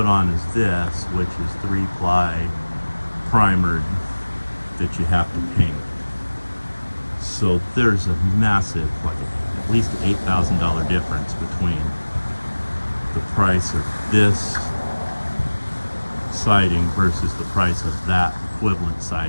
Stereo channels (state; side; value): inverted; both; correlation -1.00